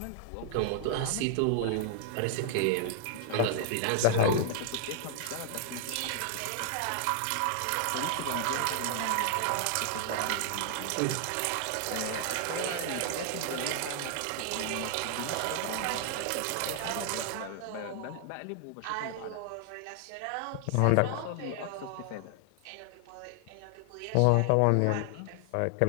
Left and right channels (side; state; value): both; different; correlation 0.00